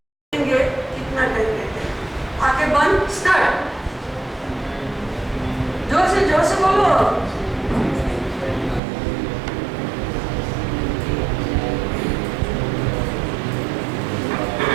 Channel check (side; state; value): left; drops out; at 8.8 s